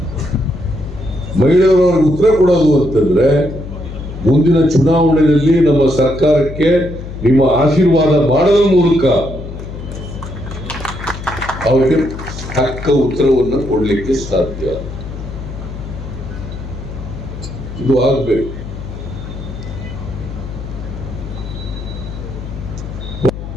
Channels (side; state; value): left; noise; hum, 10 dB below the sound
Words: ಮಹಿಳೆಯರು ಅವ್ರಿಗೆ ಉತ್ತರ ಕೊಡೋದು ಅಂತಂದ್ರೆ, ಮುಂದಿನ ಚುನಾವಣೆಯಲ್ಲಿ ನಮ್ಮ ಸರ್ಕಾರಕ್ಕೆ ನಿಮ್ಮ ಆಶೀರ್ವಾದ ಮಾಡೋದ್ರ ಮೂಲಕ ಅವರಿಗೆ ತಕ್ಕ ಉತ್ತರವನ್ನು ಕೊಡ್ಲಿಕ್ಕೆ ಸಾಧ್ಯ. ಇದು ಆಗ್ಬೇಕು.